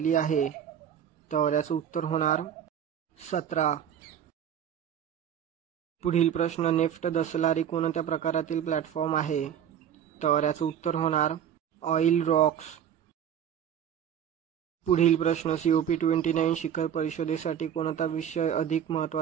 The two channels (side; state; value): left; quieter; 9.1 dB